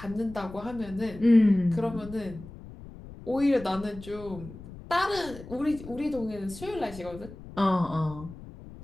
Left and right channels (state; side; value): noise; left; rumble, 15 dB below the sound